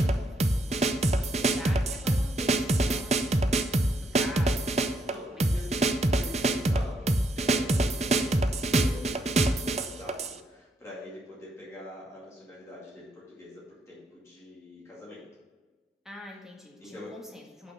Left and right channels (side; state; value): both; normal; correlation 0.76